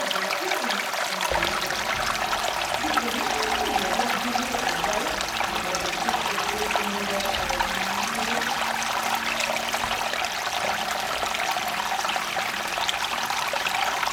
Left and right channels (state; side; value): identical; both; correlation 1.00